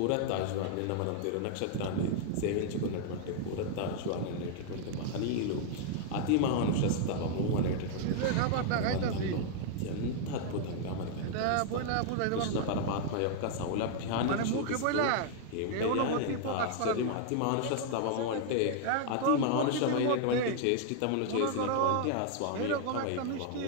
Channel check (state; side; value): different; both; correlation 0.00